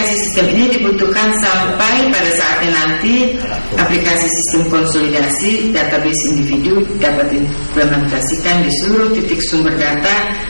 sistem ini dibutuhkan sampai pada saatnya nanti aplikasi sistem konsolidasi database individu dapat diimplementasikan di seluruh titik sumber data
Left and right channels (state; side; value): inverted; both; correlation -1.00